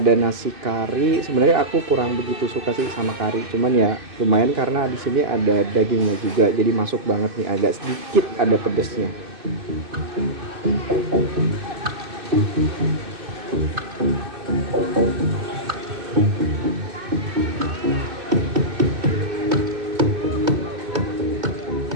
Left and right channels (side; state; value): left; late; 2.6 ms